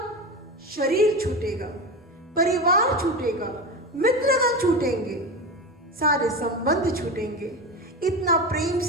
शरीर छूटेगा, परिवार छूटेगा, मित्रगण छूटेंगे, सारे संबंध छूटेंगे, इतना प्रेम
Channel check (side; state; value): both; normal; correlation 0.23